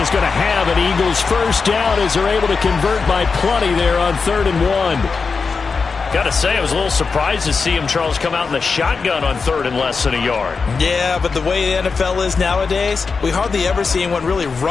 is going to have an Eagles first down as they're able to convert by plenty there on 3rd and 1. Got to say, I was a little surprised to see him, Charles, come out in the shotgun on 3rd and less than a yard. Yeah, but the way the NFL is nowadays, we hardly ever see anyone really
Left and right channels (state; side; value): quieter; right; 4.9 dB